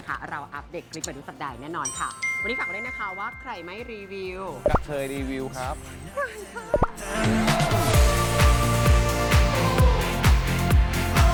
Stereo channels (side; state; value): both; identical; correlation 1.00